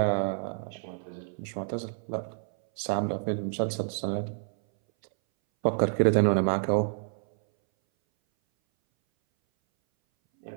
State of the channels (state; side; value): silent; left; 59 dB below the other